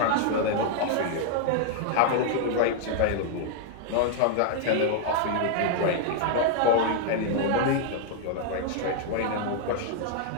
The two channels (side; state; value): both; different; correlation -0.01